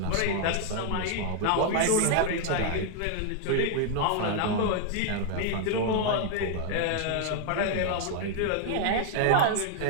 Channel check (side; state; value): both; different; correlation 0.00